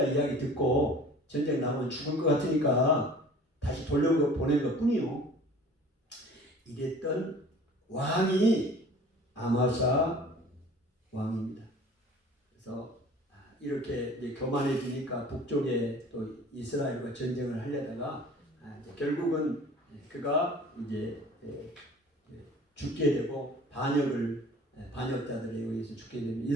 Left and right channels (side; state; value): both; normal; correlation 0.46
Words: 이야기 듣고 전쟁 나면 죽을 것 같으니까 다시 돌려보낸 것 뿐이요. 이랬던 왕이 아마샤 왕입니다. 그래서 이렇게 이제 교만해지니까 북쪽에 또 이스라엘과 전쟁을 하려다가 결국은 그가 이제 죽게 되고 반역자들에 의해서 죽게 됩니다. 이